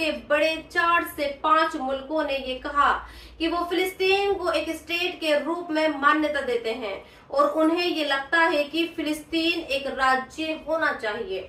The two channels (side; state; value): both; identical; correlation 1.00